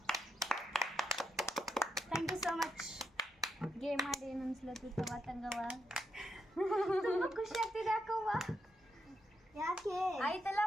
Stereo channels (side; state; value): both; normal; correlation 0.82